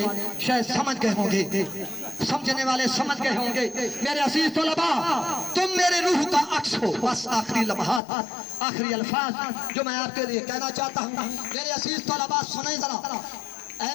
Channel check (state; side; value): drops out; right; at 8.0 s